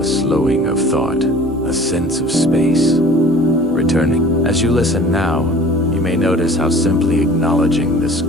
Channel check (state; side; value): normal; both; correlation 0.47